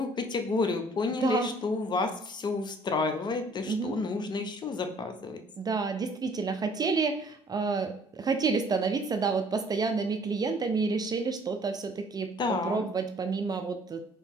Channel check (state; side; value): normal; both; correlation 0.57